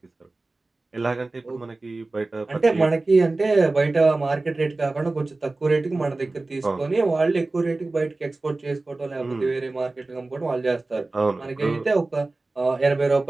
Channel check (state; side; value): quieter; left; 3.2 dB